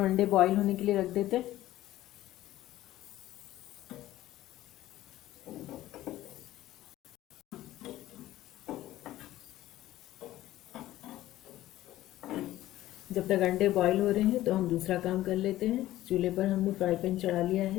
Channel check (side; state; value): right; quieter; 14.9 dB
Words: अंडे बॉईल होने के लिए रख देते हैं। जब तक अंडे बॉईल हो रहे हैं तो हम दूसरा काम कर लेते हैं। चूल्हे पर हमने फ्राई पैन चढ़ा लिया